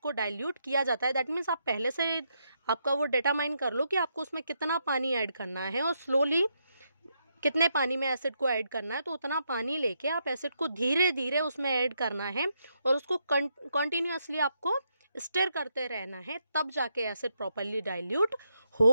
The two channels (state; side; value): inverted; both; correlation -0.79